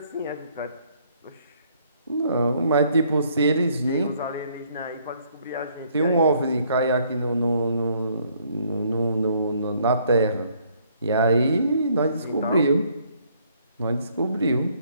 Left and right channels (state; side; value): inverted; both; correlation -0.65